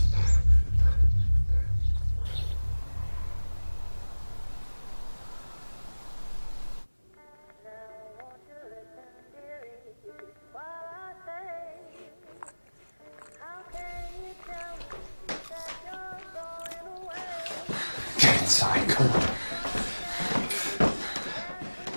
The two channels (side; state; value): both; inverted; correlation -1.00